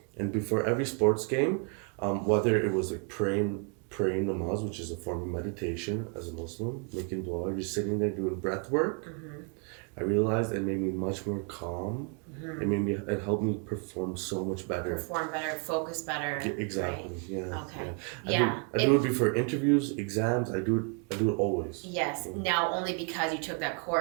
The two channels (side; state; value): left; quieter; 38.8 dB